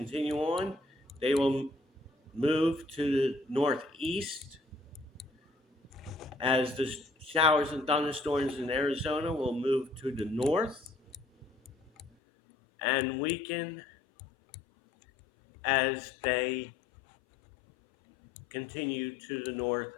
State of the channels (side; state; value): right; drops out; at 12.1 s